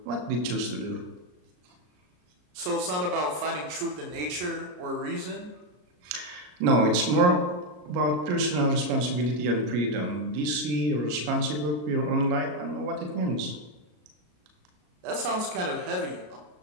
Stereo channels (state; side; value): late; left; 33 ms